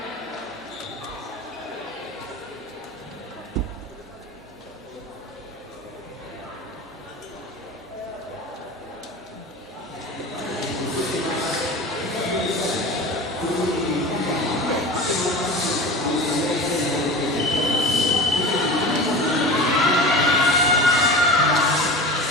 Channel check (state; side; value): normal; both; correlation 0.32